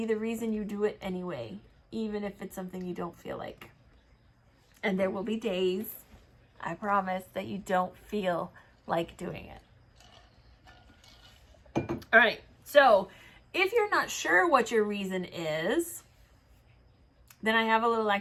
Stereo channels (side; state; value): both; identical; correlation 1.00